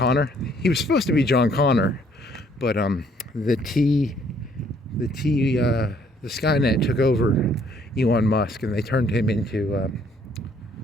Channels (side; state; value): both; normal; correlation 0.64